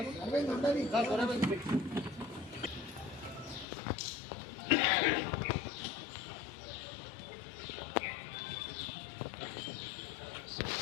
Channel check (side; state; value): right; drops out; at 3.7 s